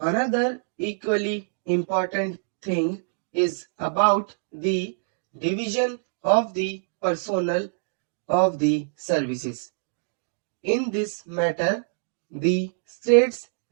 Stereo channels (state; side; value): silent; left; digital silence